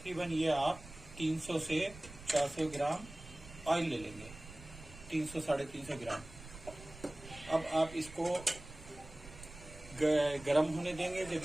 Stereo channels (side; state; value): right; noise; rumble, 17 dB below the sound